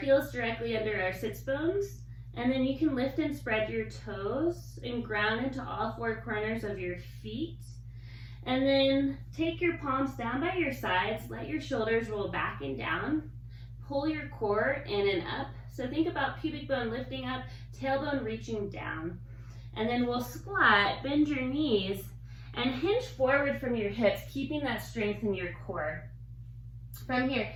heels directly under our sits bones, and then you can lift and spread your toes and ground into all 4 corners of your feet. And then take your palms down by your sides, let your shoulders roll back and down, pull your core in and up. So think about pubic bone lifting up, tailbone reaching down. And then we'll squat, bend your knees, and hinge forward from your hips, keeping that strength in your core. From here,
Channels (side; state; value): both; identical; correlation 1.00